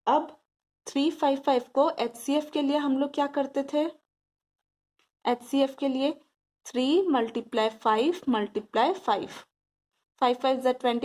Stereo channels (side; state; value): both; identical; correlation 1.00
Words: अब 3 5 5 को HCF के लिए हम लोग क्या करते थे, HCF के लिए 3 × 5 × 5, 5 5 जा